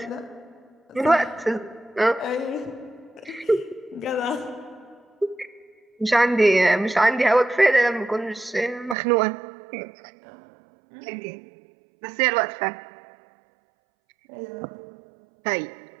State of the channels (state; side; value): drops out; left; at 9.0 s